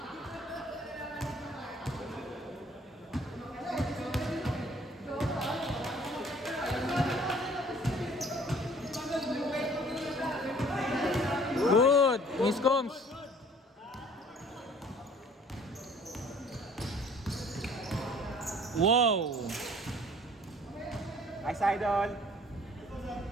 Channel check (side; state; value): both; normal; correlation 0.54